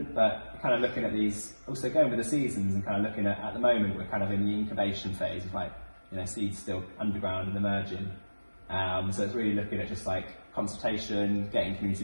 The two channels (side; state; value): both; inverted; correlation -1.00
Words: but kind of looking at these, also going with the seasons and kind of looking at the moment, we're kind of in the incubation phase of like, seeds still underground and emerging. So it's really looking at just like consultation, getting community